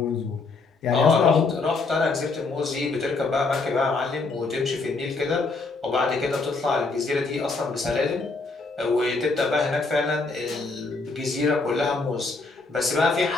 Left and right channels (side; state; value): right; quieter; 3.8 dB